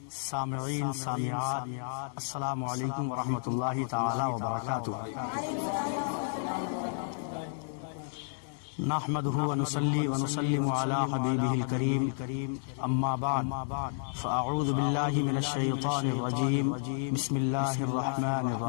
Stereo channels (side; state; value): right; silent; digital silence